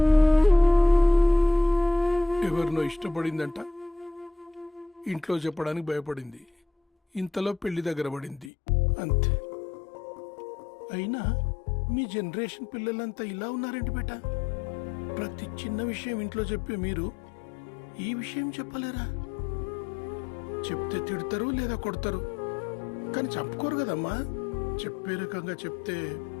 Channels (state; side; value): drops out; right; at 8.5 s